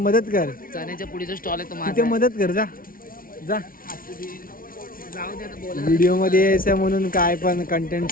कर चण्याच्या पुढीचा स्टॉल आहे तो तिथे माझा. मदत कर जा जा जाऊ दे आता बोला. व्हिडिओ मध्ये यायचं म्हणून काय पण कंटेंट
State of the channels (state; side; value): late; right; 0.42 ms